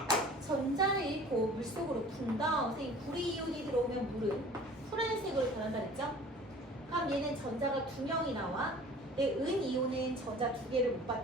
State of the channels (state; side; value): normal; both; correlation 0.46